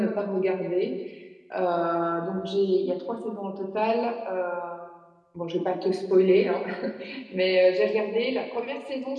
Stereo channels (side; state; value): both; identical; correlation 1.00